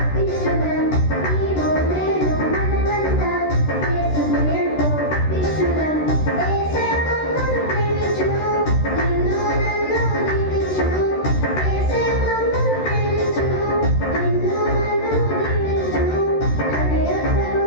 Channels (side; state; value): right; late; 13 ms